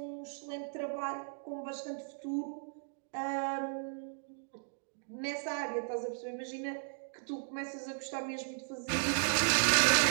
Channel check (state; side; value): silent; left; digital silence